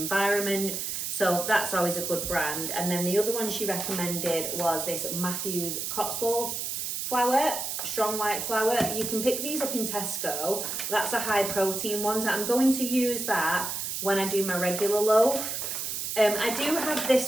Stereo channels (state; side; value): noise; right; hiss, 3 dB below the sound